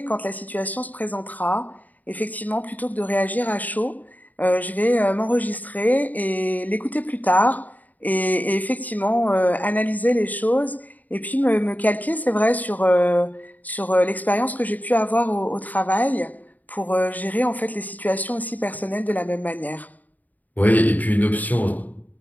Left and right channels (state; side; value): late; right; 0.079 ms